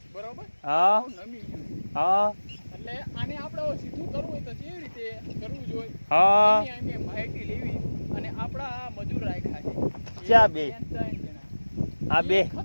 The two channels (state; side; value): inverted; both; correlation -1.00